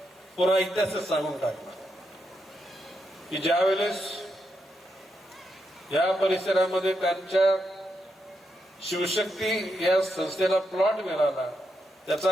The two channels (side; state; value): both; normal; correlation 0.83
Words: पुरा इतिहासच सांगून टाकला की ज्या वेळेस या परिसरामध्ये त्यांच्या शिवशक्ती या संस्थेला प्लॉट मिळाला,